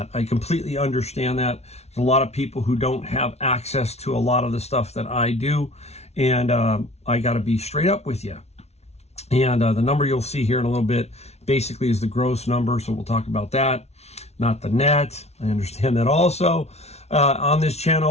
I completely understand that. There's a lot of people who don't have access to a lot of the stuff that I do, and I got to be straight up with you. And the number you'll see here in a little bit basically is the gross number, so we'll talk about that, not the net. I understand that also. On this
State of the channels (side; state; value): right; late; 0.31 ms